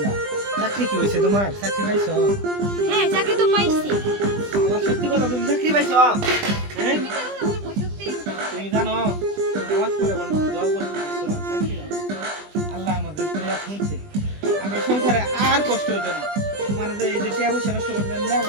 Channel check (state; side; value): late; left; 20 ms